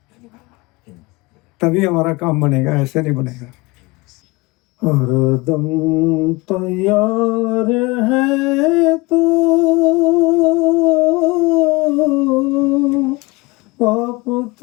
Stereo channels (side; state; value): right; quieter; 23.7 dB